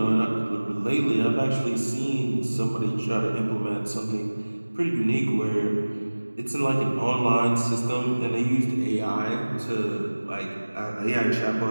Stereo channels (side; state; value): both; inverted; correlation -1.00